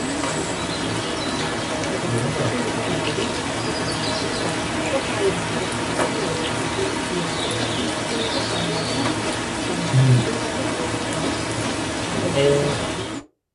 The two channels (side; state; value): both; identical; correlation 1.00